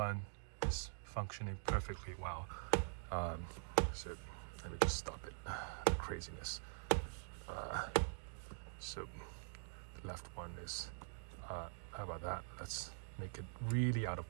is functioning perfectly well. So let me just stop it, the craziness. So the left one is how about that? Let's make it really out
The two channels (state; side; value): silent; left; digital silence